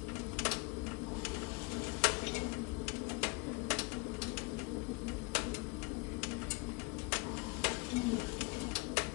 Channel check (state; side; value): quieter; right; 28.9 dB